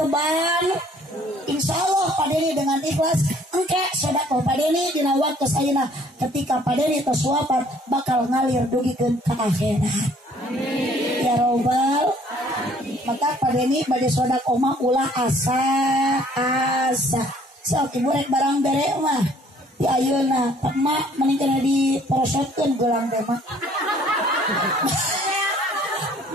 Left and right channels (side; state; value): both; normal; correlation 0.58